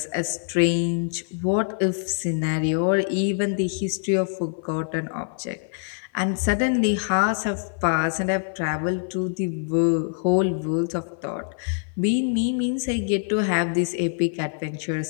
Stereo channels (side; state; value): right; silent; 59 dB below the other